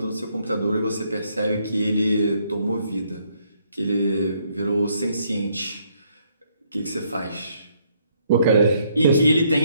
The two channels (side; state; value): both; inverted; correlation -0.70